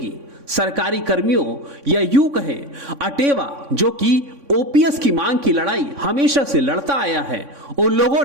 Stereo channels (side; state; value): left; late; 3.6 ms